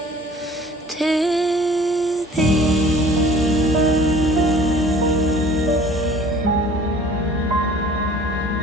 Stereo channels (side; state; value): both; normal; correlation 0.49